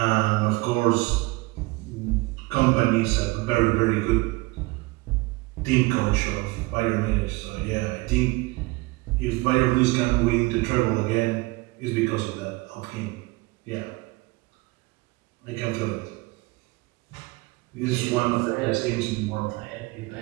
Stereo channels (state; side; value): quieter; left; 23.3 dB